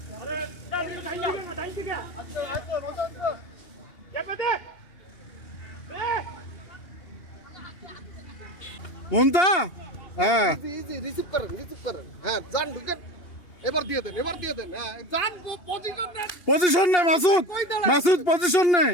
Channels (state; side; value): late; right; 2.8 ms